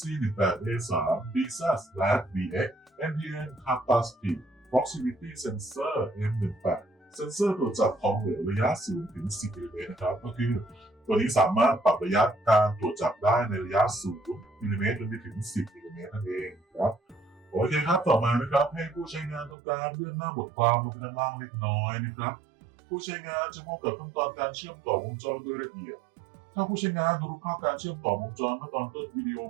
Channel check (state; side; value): drops out; left; at 19.6 s